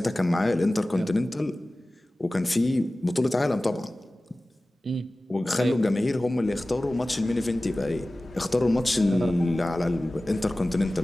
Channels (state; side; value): normal; both; correlation 0.97